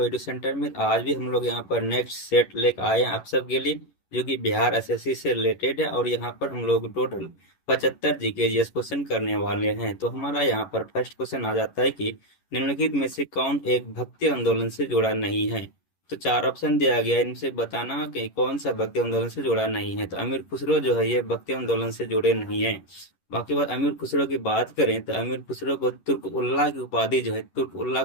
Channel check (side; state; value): right; late; 11 ms